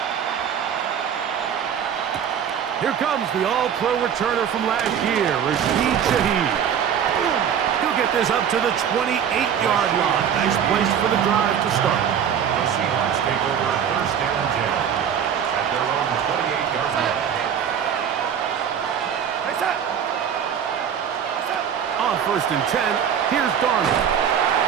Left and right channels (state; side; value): quieter; left; 8.4 dB